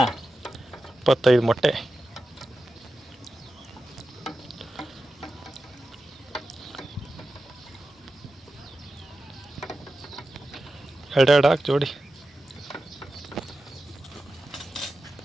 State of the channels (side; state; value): both; normal; correlation 0.92